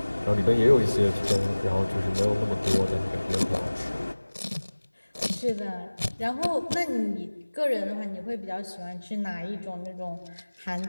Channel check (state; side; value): inverted; both; correlation -1.00